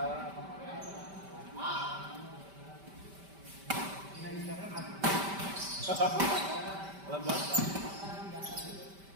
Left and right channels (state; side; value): late; left; 5.1 ms